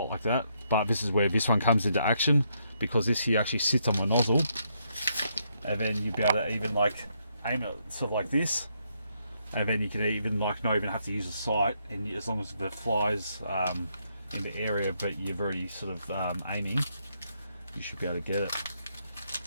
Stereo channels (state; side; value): inverted; both; correlation -0.76